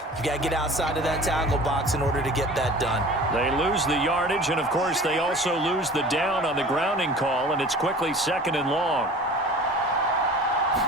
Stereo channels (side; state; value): both; normal; correlation 0.42